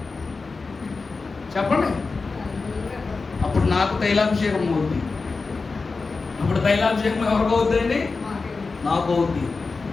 చెప్పండి? అప్పుడు నాకు తైలాభిషేకం అవుద్ది. అప్పుడు తైలాభిషేకం ఎవరికి అవుద్దండి? నాకు అవుద్ది.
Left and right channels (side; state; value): right; quieter; 4.2 dB